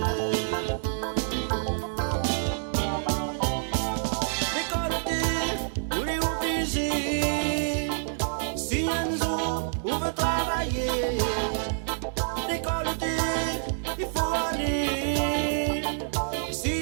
L'école t'es, vous les obligés, si un jour, vous veut travailler. L'école t'es, il faut aller, si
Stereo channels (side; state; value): left; silent; digital silence